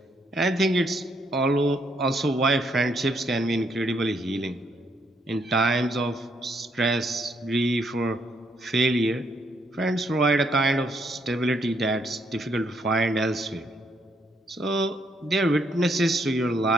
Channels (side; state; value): both; normal; correlation 0.73